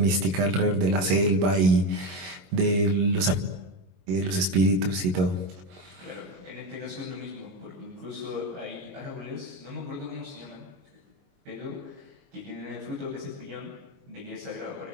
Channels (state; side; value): late; left; 21 ms